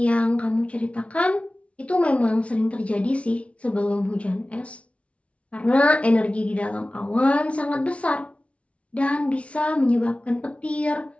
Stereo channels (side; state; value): right; late; 0.062 ms